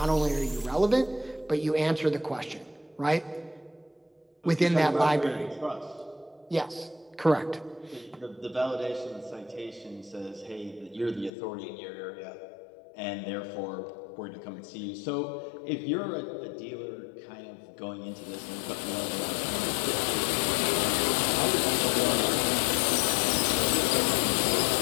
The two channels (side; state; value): right; drops out; at 11.3 s